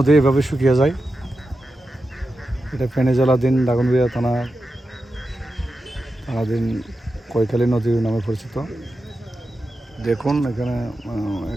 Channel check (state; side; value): normal; both; correlation 0.91